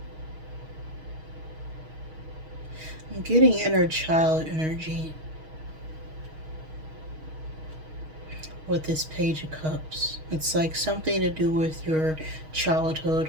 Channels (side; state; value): left; late; 6.4 ms